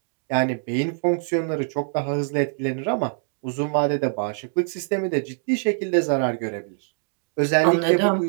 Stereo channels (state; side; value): silent; left; digital silence